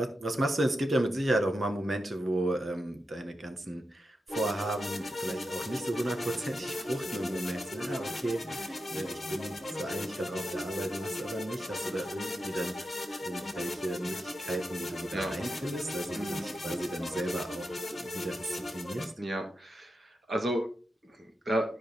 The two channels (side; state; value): both; normal; correlation 0.88